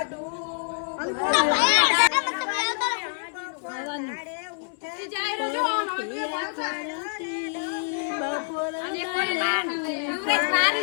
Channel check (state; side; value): silent; right; digital silence